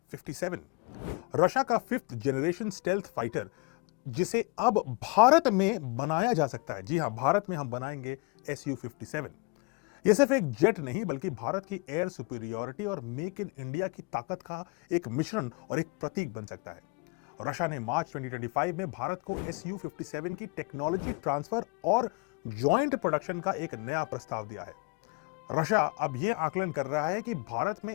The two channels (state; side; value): quieter; right; 29.5 dB